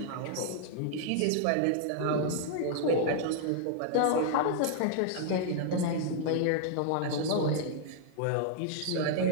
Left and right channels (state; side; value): different; both; correlation -0.01